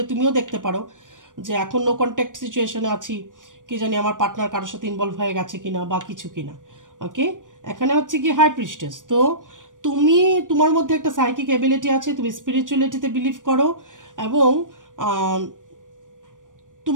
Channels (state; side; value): late; left; 0.88 ms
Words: তুমিও দেখতে পারো যে এখন নো কন্ট্যাক্ট সিচুয়েশনে আছি, কি জানি আমার পার্টনার কারোর সাথে ইনভলভ হয়ে গেছে কিনা বা কিছু কিনা। ওকে, এখানে হচ্ছে কি হাই প্রিস্টেস। তো তুমি, তোমার মধ্যে একটা সাইকিক এবিলিটি আছে, তুমি স্পিরিচুয়ালিটিতে বিলিভ করো, এবং